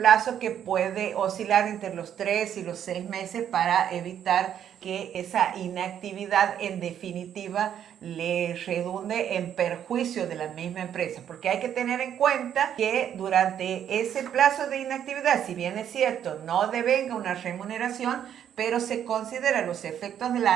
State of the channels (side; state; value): left; quieter; 9.6 dB